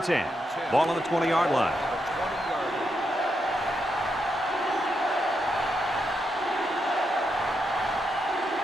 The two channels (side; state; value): both; normal; correlation 0.82